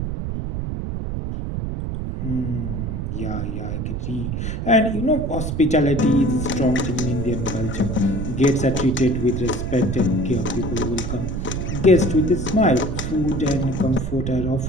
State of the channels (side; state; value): right; noise; rumble, 3 dB below the sound